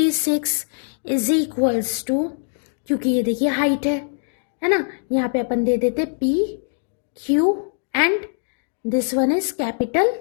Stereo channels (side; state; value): right; silent; digital silence